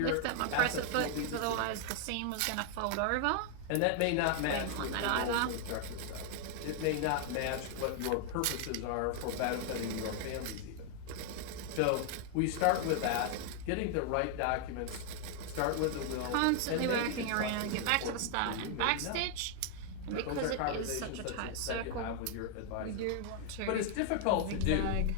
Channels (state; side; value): different; both; correlation 0.00